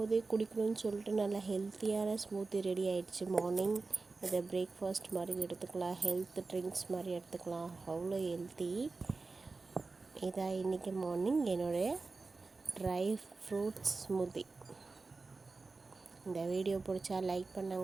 குடிக்கணும்னு சொல்லிட்டு நல்லா ஹெல்த்தியான ஸ்மூத்தி ரெடி ஆகிடுச்சி. மார்னிங் இதை பிரேக்ஃபாஸ்ட் மாதிரி எடுத்துக்கலாம், ஹெல்த் ட்ரிங்க்ஸ் மாதிரி எடுத்துக்கலாம். அவ்வளோ ஹெல்த்தி. இதான் இன்றைக்கி மார்னிங் என்னுடைய ட்ரை ஃப்ரூட்ஸ் ஸ்மூத்தி. இந்த வீடியோ பிடிச்சா லைக்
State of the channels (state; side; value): quieter; left; 3.9 dB